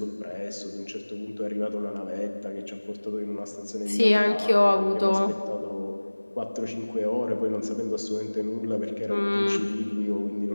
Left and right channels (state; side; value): inverted; both; correlation -1.00